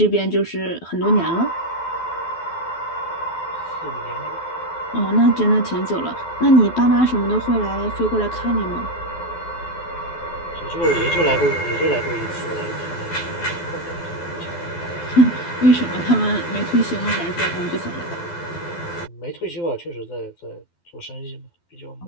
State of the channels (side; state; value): right; late; 12 ms